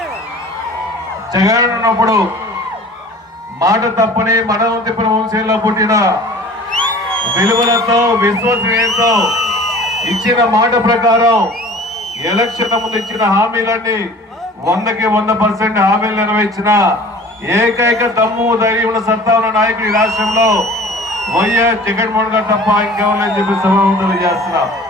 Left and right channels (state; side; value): normal; both; correlation 0.44